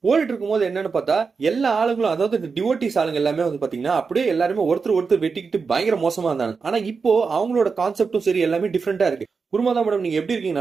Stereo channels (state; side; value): quieter; left; 5.0 dB